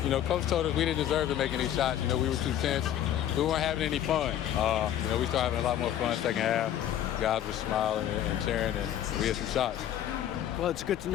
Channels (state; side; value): quieter; right; 11.1 dB